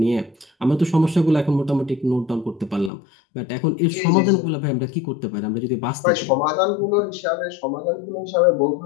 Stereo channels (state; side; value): drops out; right; at 2.9 s